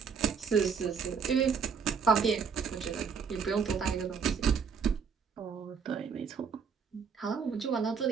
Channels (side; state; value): left; quieter; 6.2 dB